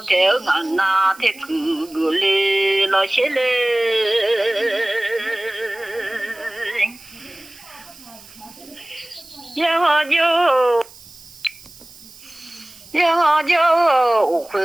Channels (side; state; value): right; noise; hiss, 21 dB below the sound